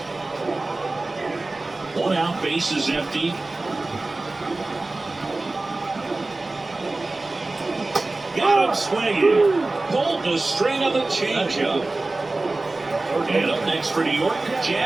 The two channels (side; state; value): left; quieter; 3.1 dB